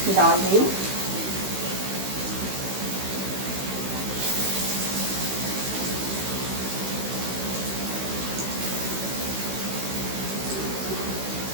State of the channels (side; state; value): left; late; 16 ms